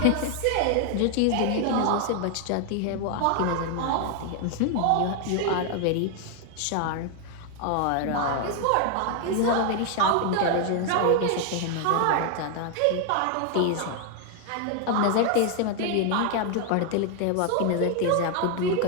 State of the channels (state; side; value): different; both; correlation 0.00